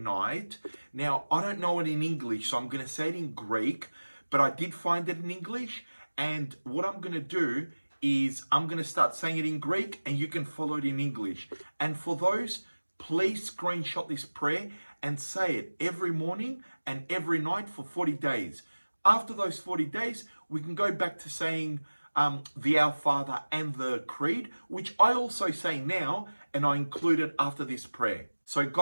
Now, I don't know it in English, so I'm going to say it in Greek, but I did find it in English. And what I'm going to do is I'm going to start saying it in Greek and you can follow it in English. And for those, please screenshot this prayer and say it every morning and every night for 40 days. After those 40 days, we can go back to saying the Our Father and the Creed, which I also say now, and I include it after this prayer. So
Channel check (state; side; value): inverted; both; correlation -1.00